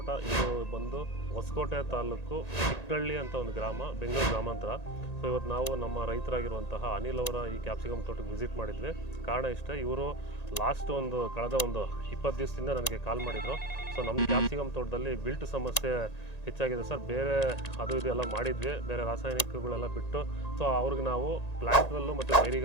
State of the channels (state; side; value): late; right; 1.9 ms